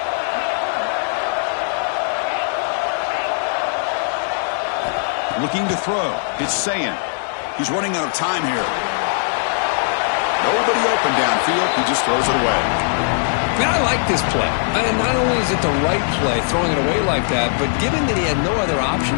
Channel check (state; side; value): silent; right; digital silence